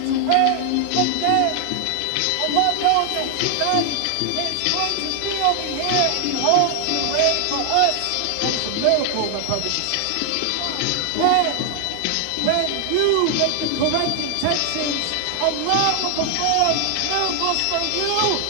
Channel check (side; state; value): both; different; correlation 0.00